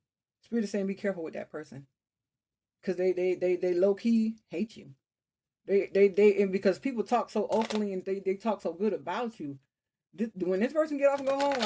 Spirit is saying be careful with that person. Because they low key hate you. And because people talk so openly and they talk so good about you. When this person get off and go home,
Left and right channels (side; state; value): both; identical; correlation 1.00